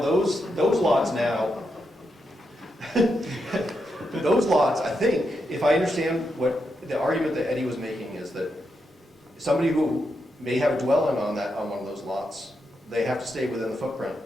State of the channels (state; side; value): normal; both; correlation 0.84